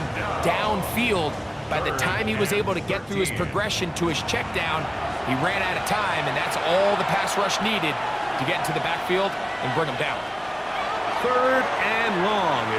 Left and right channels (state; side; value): identical; both; correlation 1.00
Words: downfield. By the time he was able to get through his progression to his check down, he ran out of time, and that's all the pass rush needed to get into the backfield and bring him down. 3rd and long,